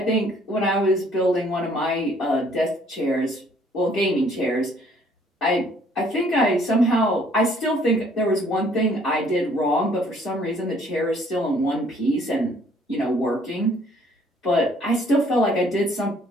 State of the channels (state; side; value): normal; both; correlation 0.61